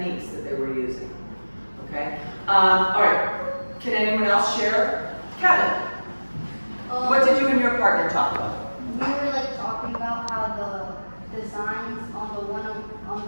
that they were using. Okay. All right. Can anyone else share? Kevin, what did you and your partner talk about? We were like talking about how the designs on the one on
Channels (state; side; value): inverted; both; correlation -1.00